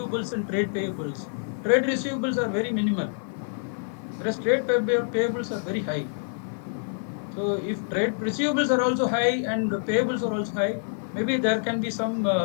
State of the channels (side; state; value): right; silent; 60 dB below the other